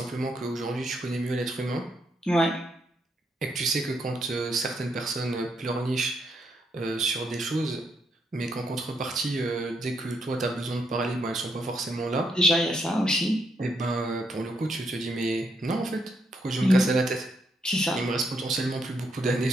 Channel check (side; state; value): both; normal; correlation 0.77